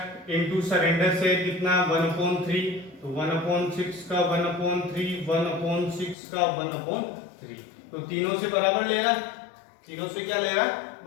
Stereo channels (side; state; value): right; drops out; at 6.2 s